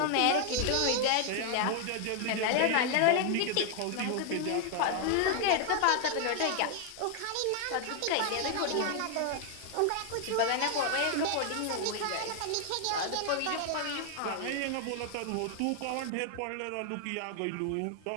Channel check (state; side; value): different; both; correlation 0.00